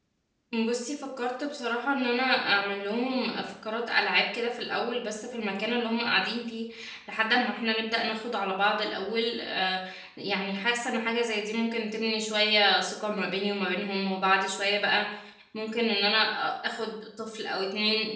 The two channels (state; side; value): identical; both; correlation 1.00